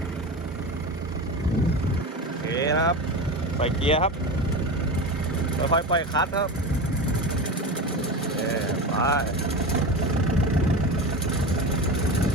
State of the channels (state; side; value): normal; both; correlation 0.24